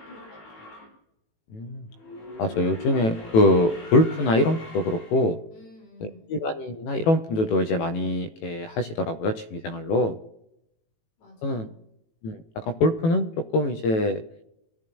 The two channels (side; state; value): right; late; 18 ms